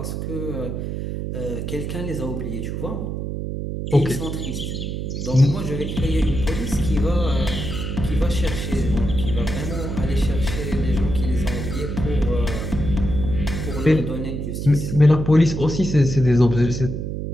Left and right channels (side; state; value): right; noise; hum, 4 dB below the sound